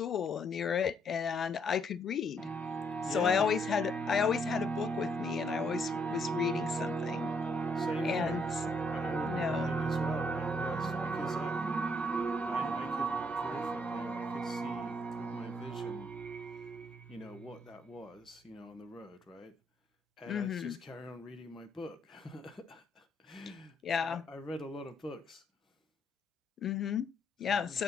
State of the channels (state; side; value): normal; both; correlation 0.72